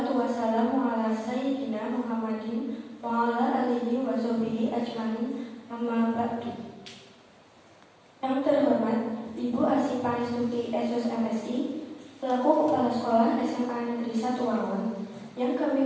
wassalamu ala sayyidina Muhammadin wa ala alihi wa sahbihi ajmain. Amma ba'du. Yang terhormat Ibu Asih Panistuti SOS MSI selaku Kepala Sekolah SMA Negeri 1 Wangon. Yang kami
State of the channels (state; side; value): identical; both; correlation 1.00